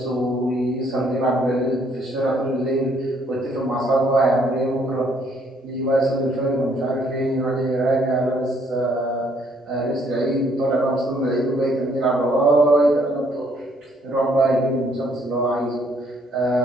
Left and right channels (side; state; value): both; normal; correlation 0.66